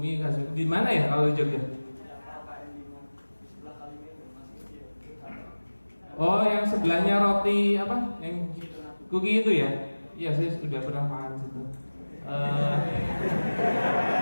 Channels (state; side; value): inverted; both; correlation -1.00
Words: khas. Di mana ya kalau di Jogja? Oh yang sebelahnya roti apa? Yang kuki itu ya? Iya saya sudah pernah makan situ.